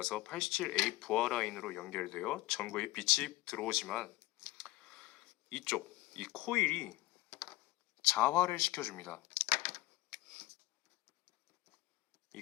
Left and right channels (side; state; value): right; quieter; 19.1 dB